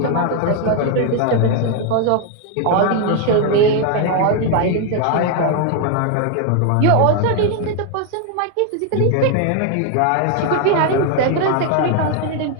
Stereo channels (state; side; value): different; both; correlation 0.01